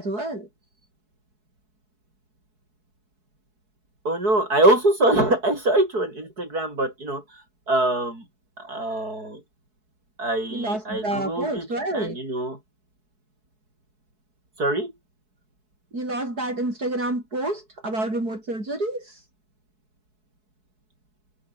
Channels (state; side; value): late; left; 4.7 ms